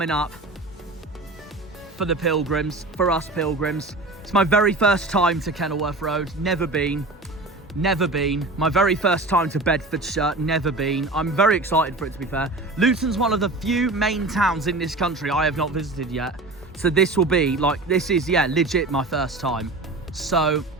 up for the Pilgrims, for us Pilgrims. It's my very first time to Kenilworth Road, never been. Never been. My very first time to Bedfordshire, never been. I'm very excited for it, to be fair. Luton's one of the few main towns in this country I have not visited yet. So this will be, like, this is, yeah, legit my first time. So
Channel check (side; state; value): left; quieter; 3.1 dB